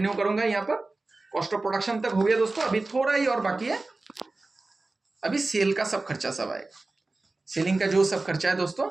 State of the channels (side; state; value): left; quieter; 3.3 dB